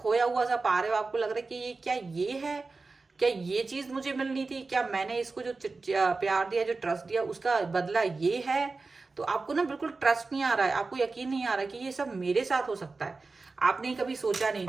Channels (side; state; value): left; quieter; 3.9 dB